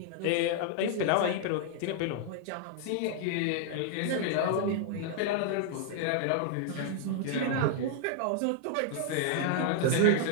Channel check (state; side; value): different; both; correlation 0.00